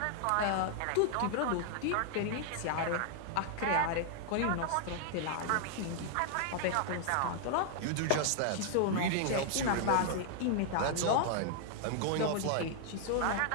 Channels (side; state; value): both; different; correlation 0.00